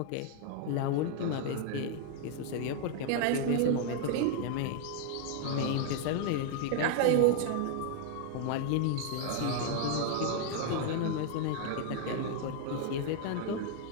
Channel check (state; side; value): different; both; correlation 0.00